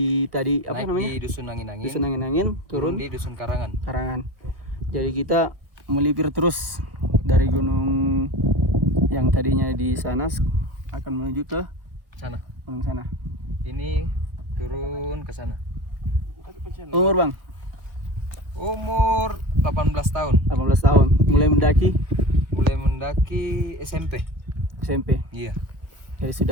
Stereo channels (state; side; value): late; left; 1.0 ms